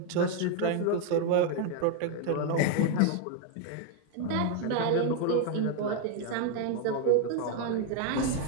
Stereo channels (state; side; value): different; both; correlation 0.01